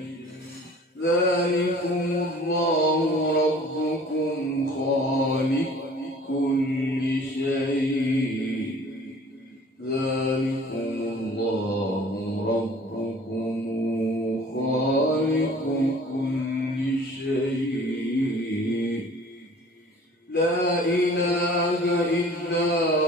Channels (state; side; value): normal; both; correlation 0.49